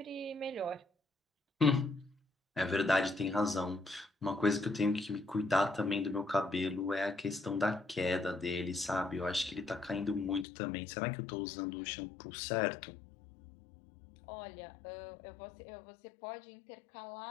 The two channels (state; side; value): drops out; right; at 10.5 s